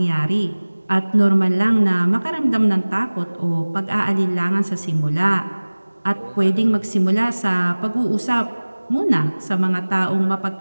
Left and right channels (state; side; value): inverted; both; correlation -1.00